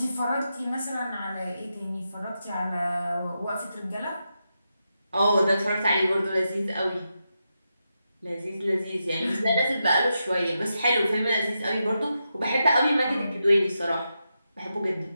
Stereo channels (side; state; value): both; inverted; correlation -0.87